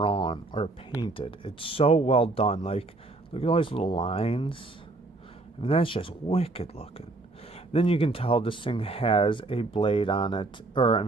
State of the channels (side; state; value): left; quieter; 3.1 dB